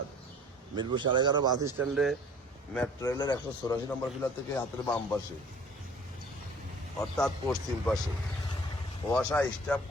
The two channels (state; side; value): normal; both; correlation 0.50